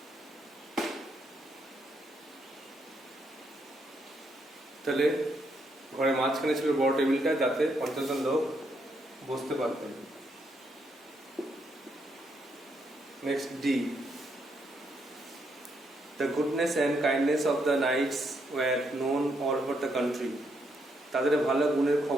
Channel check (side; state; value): both; normal; correlation 0.76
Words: তাহলে ঘরের মাঝখানে ছিল বড় টেবিলটা, যাতে 50 জন লোক বসতে পারতেন। Next D, the goodness and kindness of the knights were known all over the country. তাদের ভালো গুণের